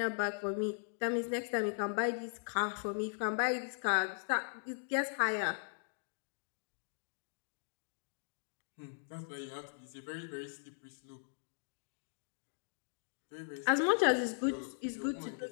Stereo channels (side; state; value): right; silent; digital silence